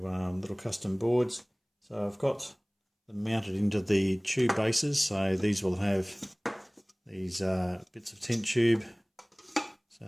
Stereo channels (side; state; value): both; identical; correlation 1.00